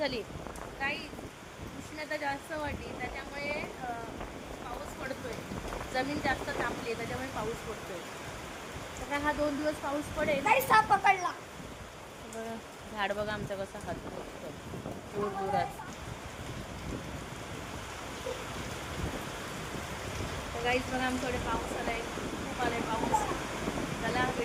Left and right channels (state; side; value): identical; both; correlation 1.00